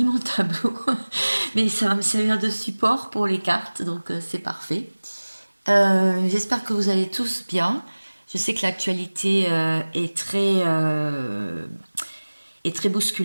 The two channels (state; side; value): inverted; both; correlation -1.00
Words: mon tableau, mais ça va me servir de support pour les cartes, donc c'est parfait. J'espère que vous allez tous bien. Je sais que l'actualité est très